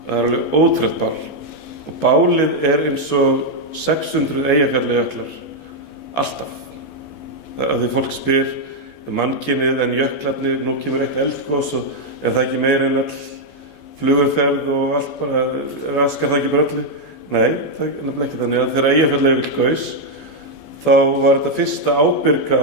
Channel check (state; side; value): late; right; 14 ms